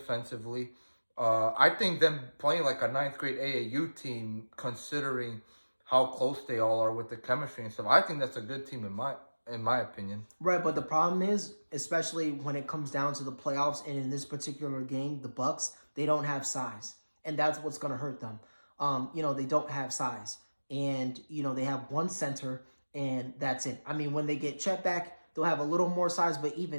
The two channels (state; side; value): inverted; both; correlation -1.00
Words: I think them playing like a ninth grade AAU team, considering how close they all are with the chemistry and stuff, I think that's a good team in my opinion. Right, but the problem is, especially when it comes down to the playoffs, and in this particular game, the Bucks, they don't have size, and that's what's going to hurt them. They don't have size, and they have one center, and that's it. I mean, when they get Chet back, they'll have a little more size, but